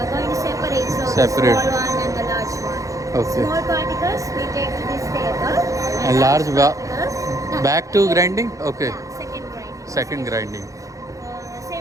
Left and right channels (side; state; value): left; late; 0.16 ms